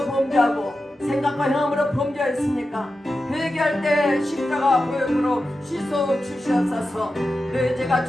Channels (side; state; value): both; normal; correlation 0.91